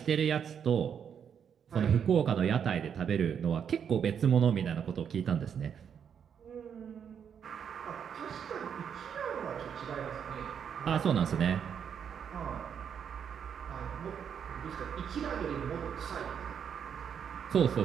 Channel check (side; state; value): left; quieter; 7.8 dB